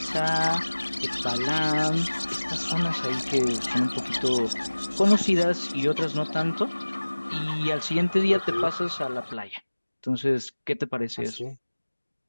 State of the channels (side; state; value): both; inverted; correlation -1.00